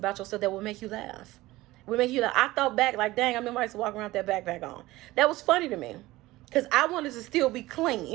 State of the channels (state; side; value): quieter; left; 18.4 dB